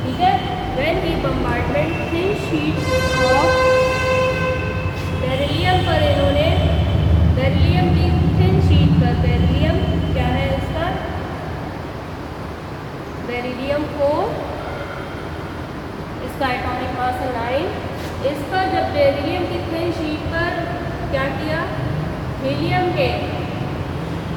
ठीक है, when he bombardment thin sheets of beryllium पर, इन्होंने बेरिलियम की थिन शीट पर, बेरिलियम क्या है इसका? बेरिलियम 4, इसका एटॉमिक मास है 9। इस पर जब बेरिलियम की थिन शीट पर क्या किया? हीलियम के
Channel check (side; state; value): both; identical; correlation 1.00